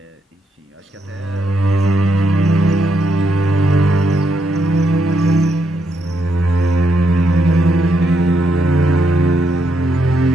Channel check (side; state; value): both; normal; correlation 0.78